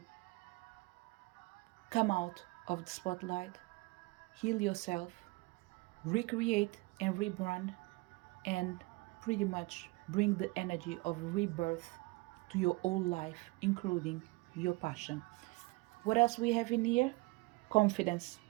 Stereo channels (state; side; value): quieter; left; 24.3 dB